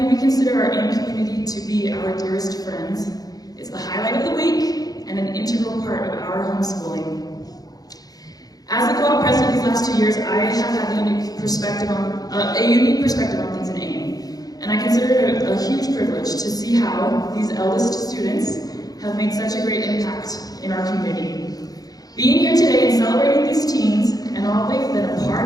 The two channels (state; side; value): late; right; 0.18 ms